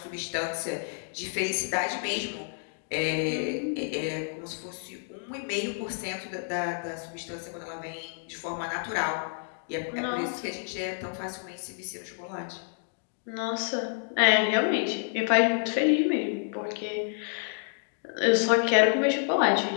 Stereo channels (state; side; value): silent; right; 58 dB below the other